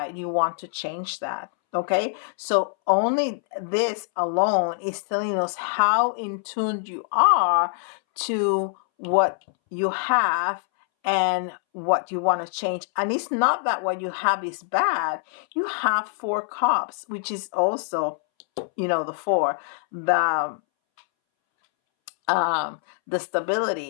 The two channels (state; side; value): silent; right; 62 dB below the other